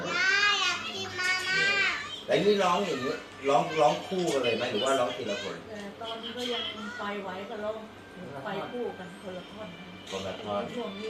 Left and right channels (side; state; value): both; identical; correlation 1.00